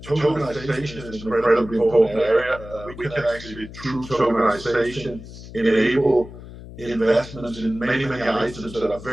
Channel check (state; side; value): noise; left; hum, 15 dB below the sound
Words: Tokenization is an incredibly important area. We can actually, through tokenization, enable investments in many items that are